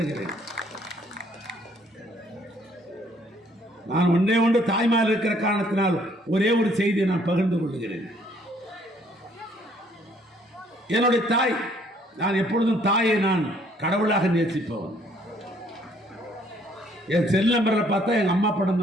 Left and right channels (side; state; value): both; normal; correlation 0.63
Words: நான் ஒன்று தாய்மார் இருக்கிற காரணத்தினால் ஒரே ஒரு செய்தியை நான் பகிர்ந்து கொள்கிறேன். என்னுடைய தாய், நான் எப்பொழுதும் தாயை நான் கடவுளாக நேசிப்பவன். என் செல் நம்பரில் பார்த்தா எங்க அம்மா படம்